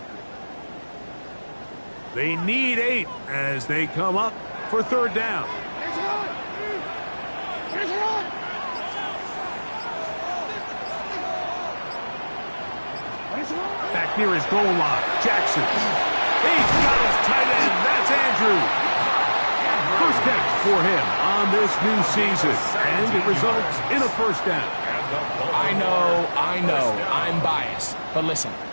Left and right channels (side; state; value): both; inverted; correlation -1.00